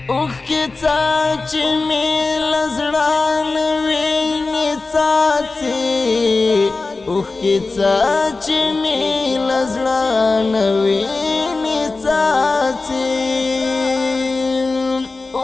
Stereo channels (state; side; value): quieter; right; 3.7 dB